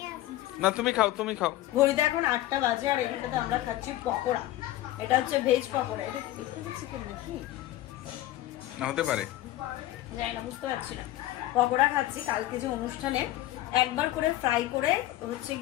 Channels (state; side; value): quieter; right; 15.1 dB